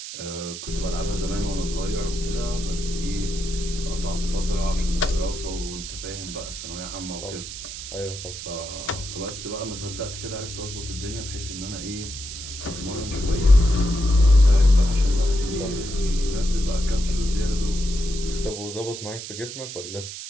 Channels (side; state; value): right; noise; hiss, 9 dB below the sound